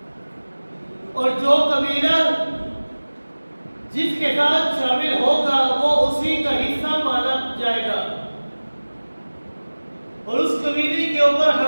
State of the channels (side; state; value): both; inverted; correlation -1.00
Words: اور جو قبیلہ جس کے ساتھ شامل ہوگا وہ اسی کا حصہ مانا جائے گا، اور اس قبیلے کے اوپر